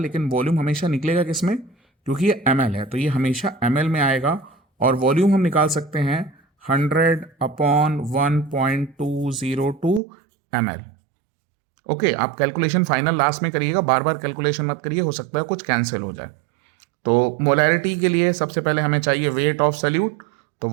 वॉल्यूम हमेशा निकलेगा किस में, क्योंकि ये ml है तो ये हमेशा ml में आएगा, और वॉल्यूम हम निकाल सकते हैं 100 अपॉन 1.202 ml। ओके, आप कैलकुलेशन फाइनल लास्ट में करिएगा, बार बार कैलकुलेशन मत करिए, हो सकता है कुछ कैंसिल हो जाए। तो मोलैरिटी के लिए सबसे पहले हमें चाहिए वेट ऑफ सॉल्यूट, तो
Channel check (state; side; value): drops out; left; at 10.0 s